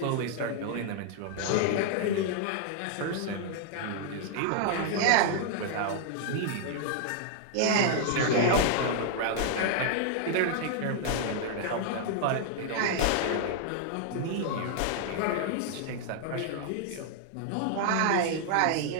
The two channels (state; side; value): different; both; correlation 0.00